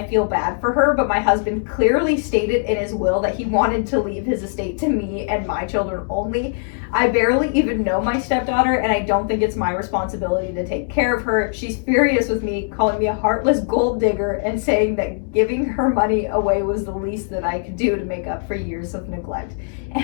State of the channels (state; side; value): silent; right; digital silence